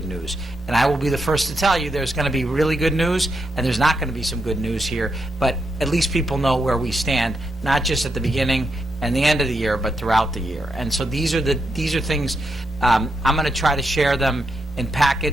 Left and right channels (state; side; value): normal; both; correlation 0.83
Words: news. And I will be the first to tell you there's going to be really good news and there's not going to be some good news here, but at least people know where we stand, not just at the beginning and the end of the year, but throughout the year. And so these are things, I'm going to try to share them in